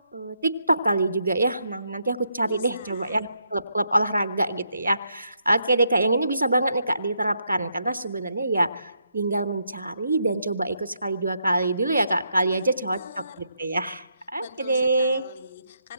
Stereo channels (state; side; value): inverted; both; correlation -0.77